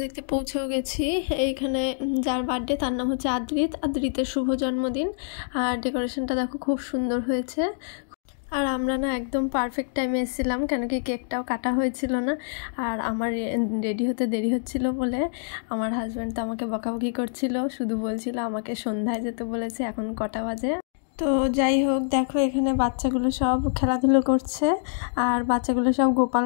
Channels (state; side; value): silent; right; digital silence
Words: দেখতে পৌঁছেও গেছি। এইখানে যার বার্থডে তার নাম হচ্ছে আদ্রিতের শুভ জন্মদিন। আর ডেকোরেশনটা দেখো, খুব সুন্দর হয়েছে। আর আমরা না একদম পারফেক্ট টাইমে এসেছিলাম, কেন কি কেকটাও কাটা হয়েছিল না। আর আমার রেডি হতে দেরি হচ্ছিল বলে আমার হাজব্যান্ড তো আমাকে বকাবকি করছিল, শুধু বলছিল আমাকে সন্ধ্যায় যেতে বলেছে, এখন কটা বাজে। তো যাই হোক, দেখো এখানে বাচ্চাগুলো সব খেলাধুলো করছে। আর বাচ্চাগুলো সব গোপাল